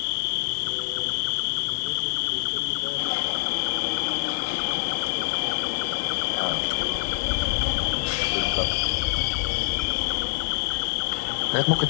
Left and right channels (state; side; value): silent; right; 61 dB below the other